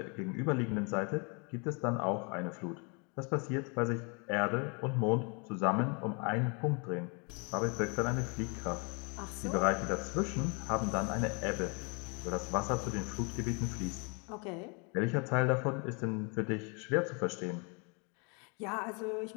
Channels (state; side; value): quieter; right; 33.2 dB